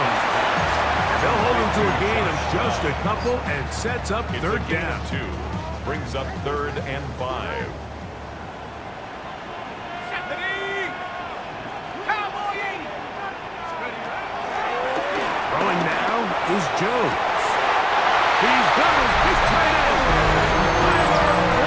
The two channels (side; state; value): both; identical; correlation 1.00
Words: They'll hold him to a gain of just a couple and sets up third down. 2. Brings up 3rd and 5. Throwing now is Jones. He's got his big tight end. Tyler